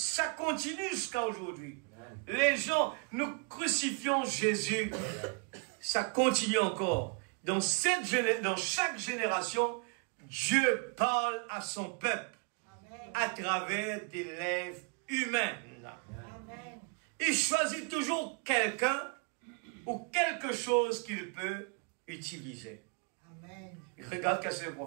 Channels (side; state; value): left; quieter; 35.7 dB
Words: continue jusqu'à aujourd'hui. Les gens, nous crucifions Jésus, ça continue encore. Dans chaque génération, Dieu parle à son peuple à travers des lèvres humaines. Il choisit toujours quelqu'un ou quelque chose qu'il peut utiliser. Regarde ce que le